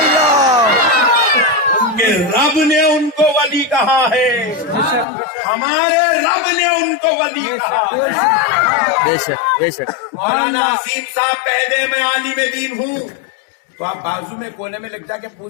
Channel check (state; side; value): drops out; right; at 5.1 s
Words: ان کے رب نے ان کو ولی کہا ہے، ہمارے رب نے ان کو ولی کہا ہے۔ بے شک بے شک۔ مولانا عظیم صاحب کہہ دے میں عالم دین ہوں تو آپ بازو میں کونے میں لگ جا کے